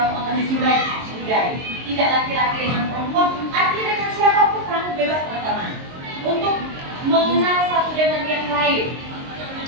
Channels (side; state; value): left; late; 22 ms